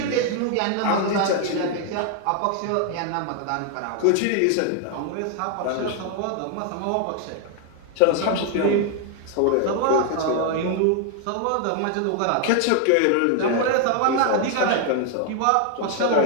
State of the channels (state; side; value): different; both; correlation 0.00